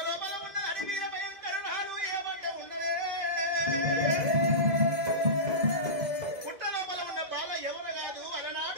లోపల ఉన్నది అని వీర భయంకరునాడు ఏమంట ఉన్నదే పుట్ట లోపల ఉన్న బాల ఎవరు కాదు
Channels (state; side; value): late; left; 2.5 ms